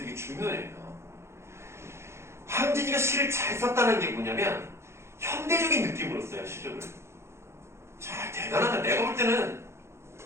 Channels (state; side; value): late; left; 0.13 ms